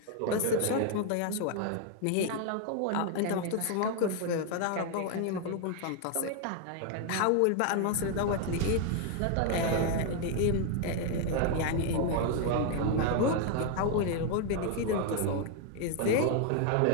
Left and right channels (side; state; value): both; different; correlation 0.01